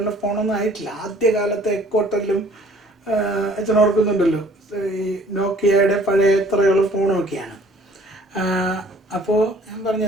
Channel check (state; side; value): normal; both; correlation 0.55